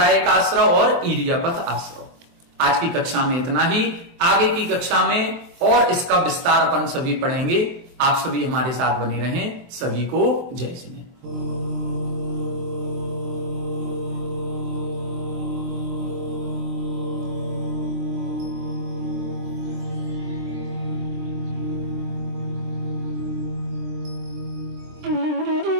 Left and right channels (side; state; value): left; late; 23 ms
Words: आश्रव और ईरियापथ आश्रव। आज की कक्षा में इतना ही, आगे की कक्षा में और इसका विस्तार अपन सभी पढ़ेंगे। आप सभी हमारे साथ बने रहें। सभी को जय जिनेन्द्र।